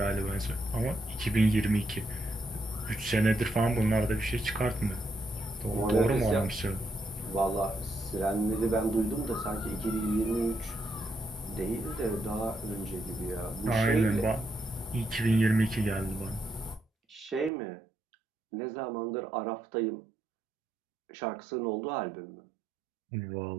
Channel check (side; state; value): left; drops out; at 17.5 s